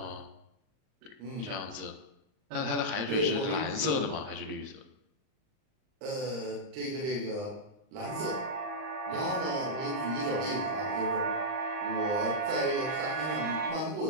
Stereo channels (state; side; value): late; left; 39 ms